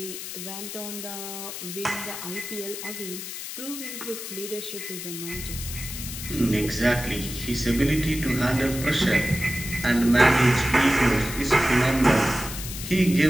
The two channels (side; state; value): left; noise; hiss, 8 dB below the sound